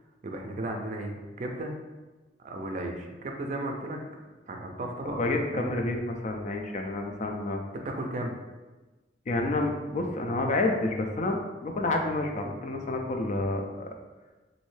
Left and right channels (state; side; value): normal; both; correlation 0.37